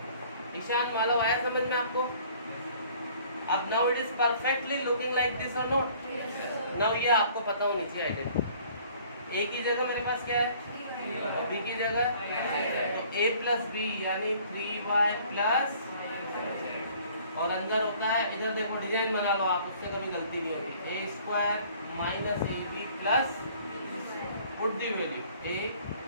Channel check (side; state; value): both; inverted; correlation -0.55